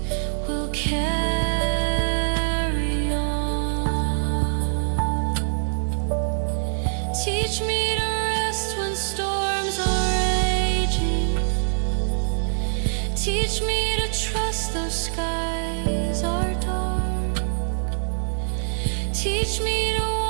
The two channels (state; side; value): silent; left; digital silence